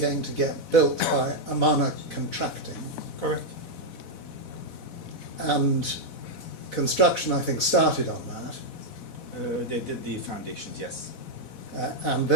to get built by Amana Contracting. Correct. And construction, I think, started on that. They did the foundations, yes. And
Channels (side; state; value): right; late; 4.1 ms